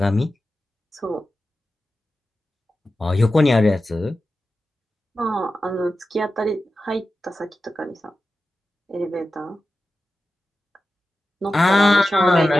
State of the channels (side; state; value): both; normal; correlation 0.93